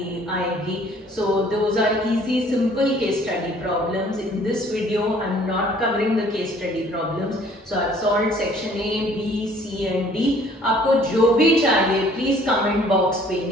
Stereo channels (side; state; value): both; normal; correlation 0.57